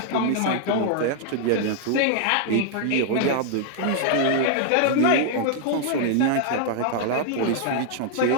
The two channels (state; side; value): different; both; correlation -0.01